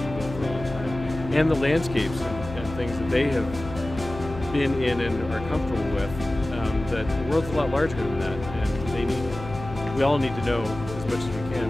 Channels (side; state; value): left; noise; hum, 12 dB below the sound